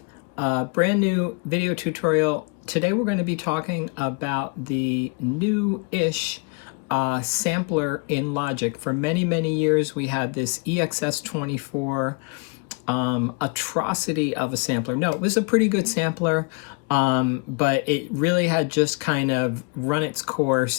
a brand new video tutorial. Today we're going to be talking about the new-ish sampler in Logic. For many years we had this EXS24 atrocity of a sampler. No, it was a pretty good sampler, but it really had just kind of run its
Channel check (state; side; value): quieter; right; 32.8 dB